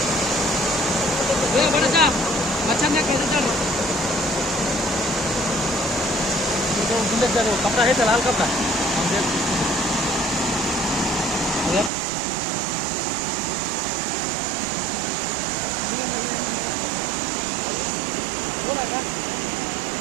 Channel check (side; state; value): left; drops out; at 11.9 s